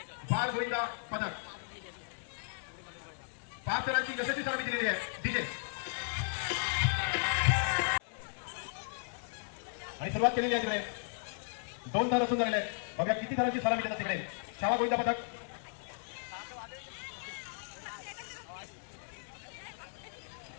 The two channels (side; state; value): right; silent; digital silence